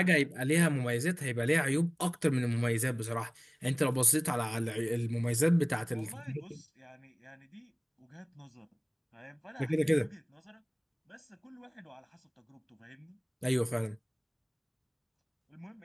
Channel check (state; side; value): identical; both; correlation 1.00